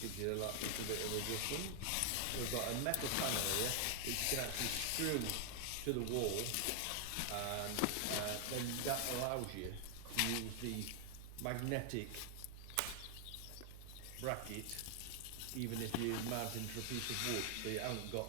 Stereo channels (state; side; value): different; both; correlation 0.00